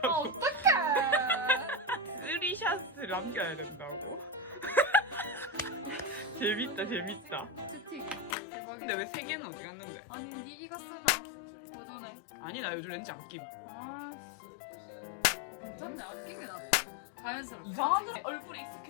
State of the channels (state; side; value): drops out; right; at 8.3 s